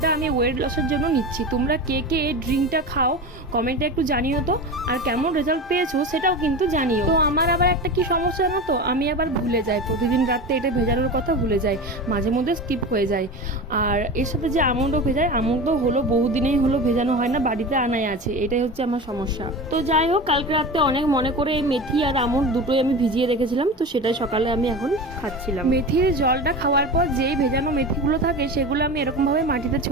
আমি ওয়েট লসের জন্য নিচ্ছি। তোমরা কে কে এই ড্রিঙ্কটা খাও কমেন্টে একটু জানিও তো, আর কেমন রেজাল্ট পেয়েছো সেটাও কিন্তু জানিও। তো আমার আবার একটা কি সমস্যা জানো তো, আমি আবার ভুলে যাই, প্রতিদিন রাত্রে এটা ভেজানোর কথা ভুলে যাই, মাঝে মধ্যে স্কিপ হয়ে যায়। আর এর সাথে যে আমন্ডও ভেজায়, আমন্ড হলো বহুদিনেই হলো ভেজানো হয় না, বাড়িতে আনাই আছে, এটাই হচ্ছে আমার সমস্যা। তো যাই হোক, কালকে রাতে অনেক মনে করে এই মেথি আর আমন্ড দুটোই আমি ভিজিয়ে রেখেছিলাম, তো সেটাই সকালে আমি এখন খাচ্ছিলাম। মেথির জলটা খাওয়ার পর যেই ভেজানো মেথিগুলো থাকে সেগুলো আমি এরকম ভাবে মাটিতে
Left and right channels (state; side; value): normal; both; correlation 0.28